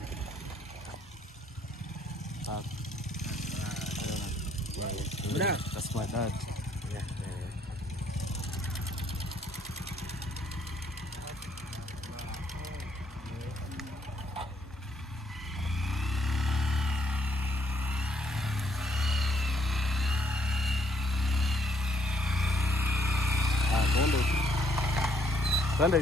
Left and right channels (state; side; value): normal; both; correlation 0.68